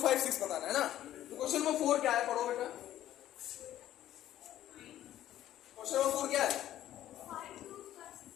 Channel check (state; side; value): quieter; right; 12.7 dB